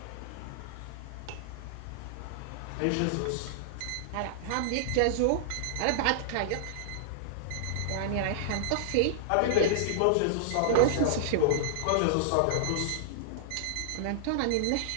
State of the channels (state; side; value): different; both; correlation -0.01